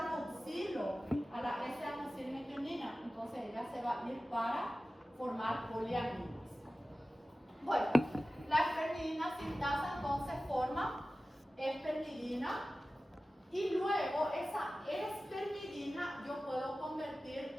a la S-adenosine-metionina, entonces ella se va a ir para formar poliaminas. Bueno, la espermidina sintasa entonces forma espermidina y luego esa espermidina yo puedo convertir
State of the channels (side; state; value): both; normal; correlation 0.96